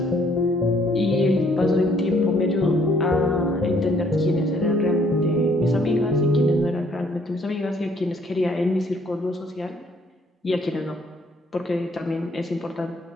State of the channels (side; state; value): both; normal; correlation 0.64